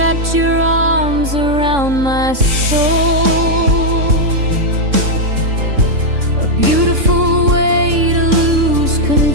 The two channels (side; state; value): left; late; 3.6 ms